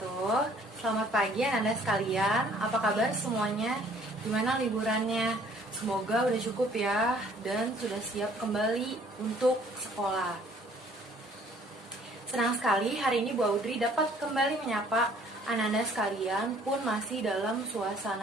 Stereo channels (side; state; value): both; normal; correlation 0.58